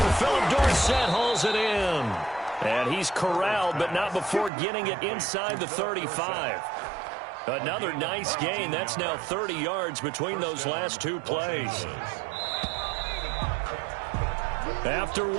Philip Dorsett hauls it in. And he's corralled, but not before getting it inside the 35. Another nice gain. That's now 30 yards between those last 2 plays. After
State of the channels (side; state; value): left; drops out; at 4.5 s